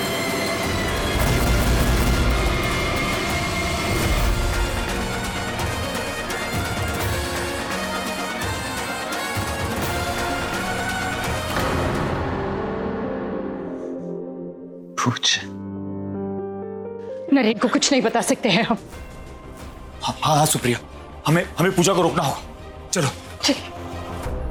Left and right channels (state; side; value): identical; both; correlation 1.00